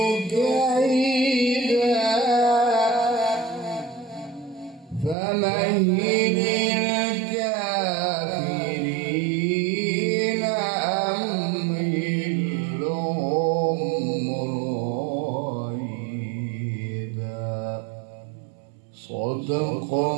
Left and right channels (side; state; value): left; drops out; at 5.2 s